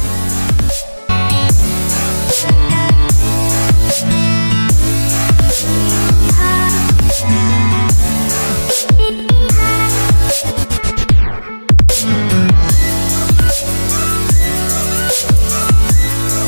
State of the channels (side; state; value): both; inverted; correlation -1.00